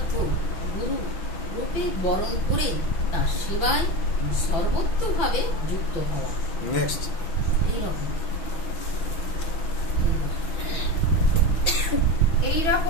গুরু রূপে বরণ করে তার সেবায় সর্বোত্তভাবে যুক্ত হওয়া। নেক্সট হে এই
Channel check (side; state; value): right; late; 5.9 ms